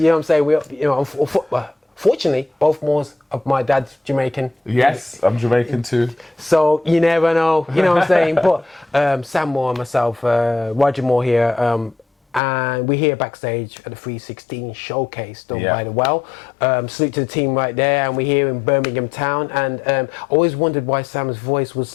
know what I'm saying? Fortunately, both Moors of my dad's Jamaican. Yes, I'm Jamaican too. So you never know. You know what I'm saying? But Sam Moore and myself, Roger Moore here. And we're here backstage at the 316 showcase done by the Well. Salute to the team right there, and we're here in Birmingham town. And always wondered why Sam's voice was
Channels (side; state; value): right; drops out; at 12.4 s